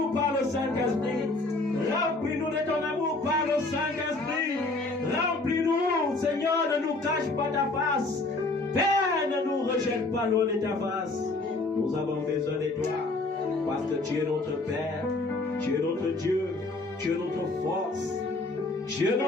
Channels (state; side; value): quieter; right; 3.1 dB